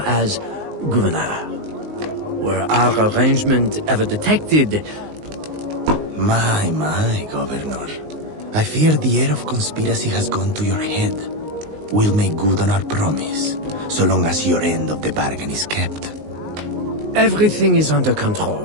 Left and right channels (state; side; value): late; left; 19 ms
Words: as governor. Were our arrangement ever detected? My, Governor. I fear the air of conspiracy has gone to your head. We'll make good on our promise, so long as your end of the bargain is kept. Everything is under